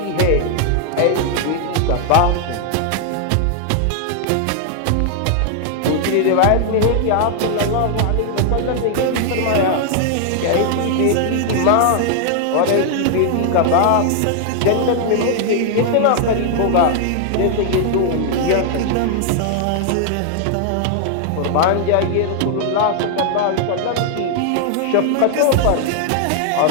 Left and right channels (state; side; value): different; both; correlation 0.00